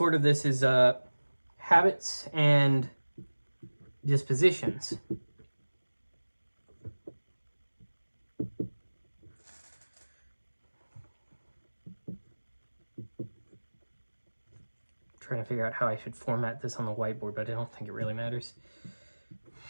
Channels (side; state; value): both; inverted; correlation -1.00